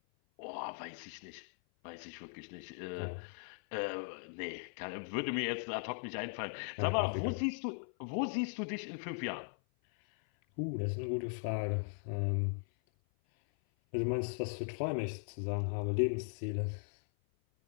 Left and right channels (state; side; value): silent; right; 52 dB below the other